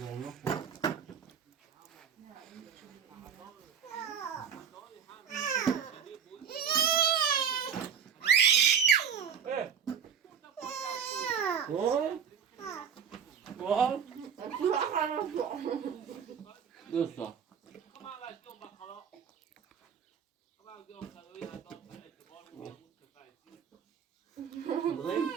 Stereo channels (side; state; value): left; quieter; 7.4 dB